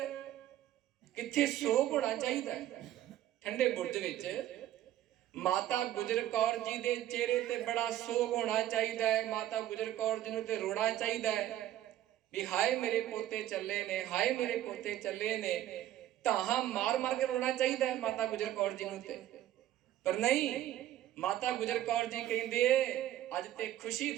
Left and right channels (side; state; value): left; quieter; 12.9 dB